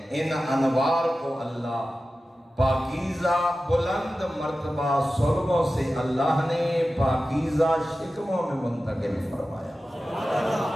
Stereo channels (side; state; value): both; normal; correlation 0.94